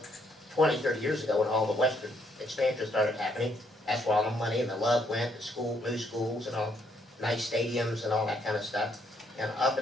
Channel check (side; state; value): both; normal; correlation 0.71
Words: 20, 30 years ago when all the western expansion started happening. That's where all the money and the love went, to new schools and all, nice stadiums and all that kind of stuff. And up